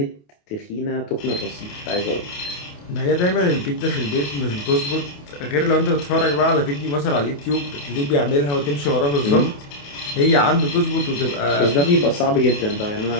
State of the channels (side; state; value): right; late; 28 ms